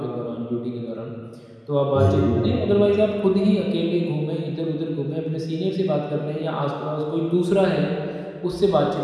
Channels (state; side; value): identical; both; correlation 1.00